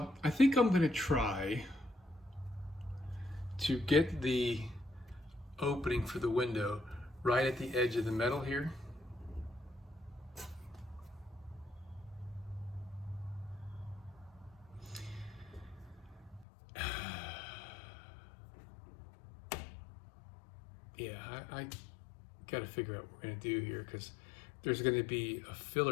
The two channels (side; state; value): right; drops out; at 16.4 s